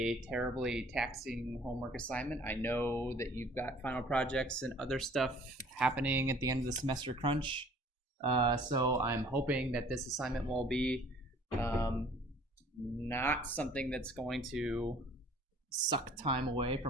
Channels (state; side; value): normal; both; correlation 0.54